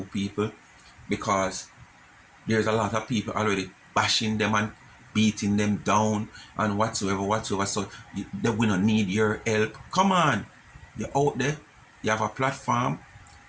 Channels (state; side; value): identical; both; correlation 1.00